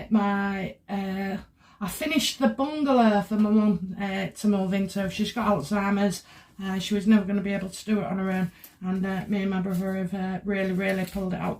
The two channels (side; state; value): both; identical; correlation 1.00